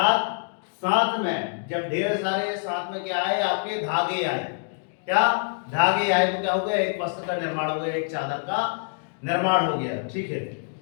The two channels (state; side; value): silent; right; digital silence